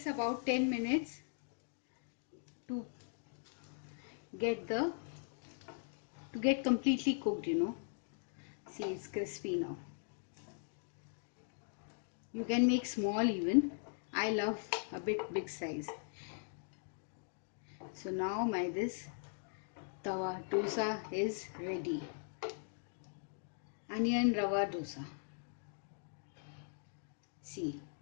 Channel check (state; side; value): silent; right; digital silence